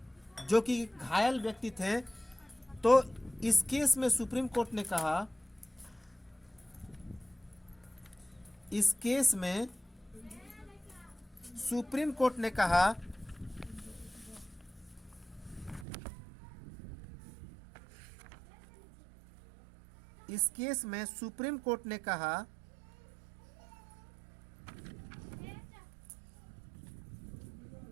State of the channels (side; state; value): left; drops out; at 15.9 s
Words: जो कि घायल व्यक्ति थे, तो इस केस में सुप्रीम कोर्ट ने कहा, इस केस में सुप्रीम कोर्ट ने कहा इस केस में सुप्रीम कोर्ट ने कहा